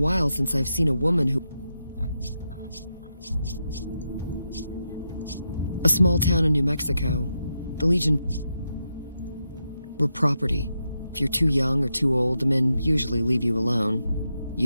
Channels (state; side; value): inverted; both; correlation -0.85